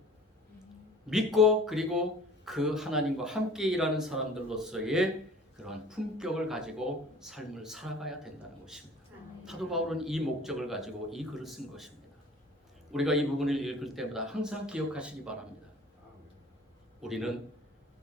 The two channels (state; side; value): normal; both; correlation 0.47